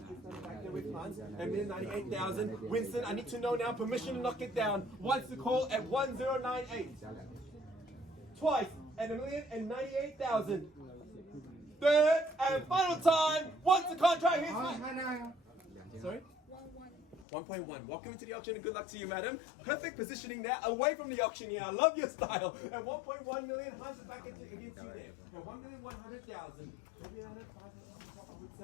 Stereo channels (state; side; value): drops out; right; at 17.2 s